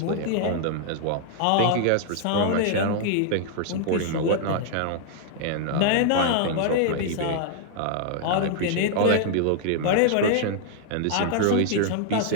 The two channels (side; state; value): both; different; correlation 0.00